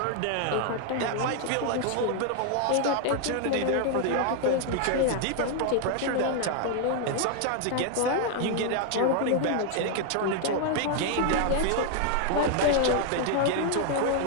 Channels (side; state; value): both; different; correlation 0.00